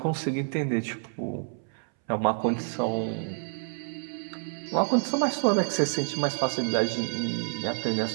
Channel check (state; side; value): silent; left; 59 dB below the other